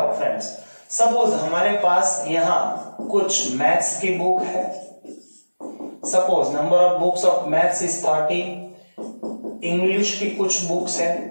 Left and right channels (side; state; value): both; inverted; correlation -1.00